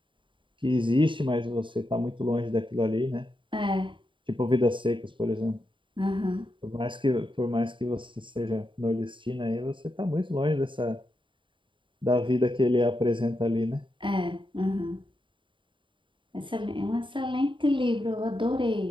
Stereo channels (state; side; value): late; left; 0.24 ms